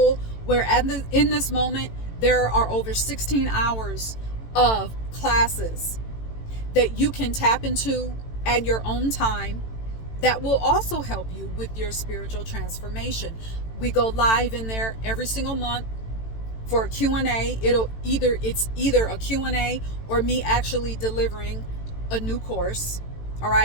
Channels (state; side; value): late; right; 18 ms